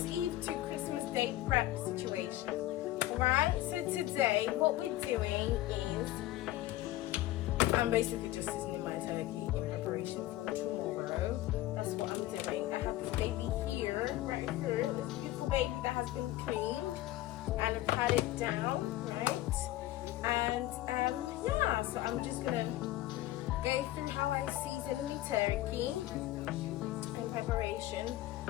Eve to Christmas Day prep situation. Alright, so today what we're doing is I'm basically just seasoning my turkey in preparation for tomorrow. That's what I'm doing. I have this baby here, right here, this beautiful baby that has been cleaned and I've had it down, right? And yeah, so I'm just gonna go through how I season the turkey in preparation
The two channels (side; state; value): right; quieter; 15.8 dB